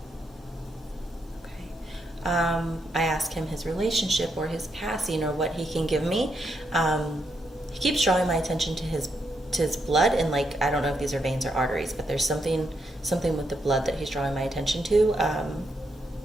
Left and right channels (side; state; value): both; normal; correlation 0.80